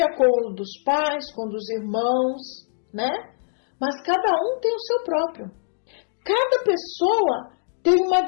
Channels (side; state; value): right; silent; digital silence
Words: com o dos pais, com o dos irmãos, né? Mas cada um tem o seu próprio. Cada pessoa tem uma